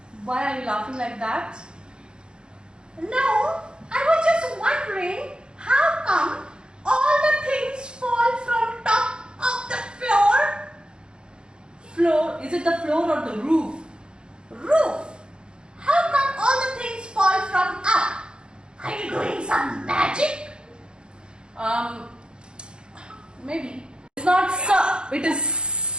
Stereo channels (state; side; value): late; left; 0.050 ms